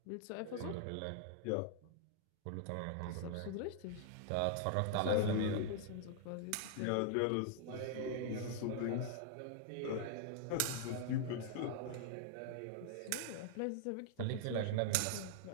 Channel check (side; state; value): both; different; correlation -0.01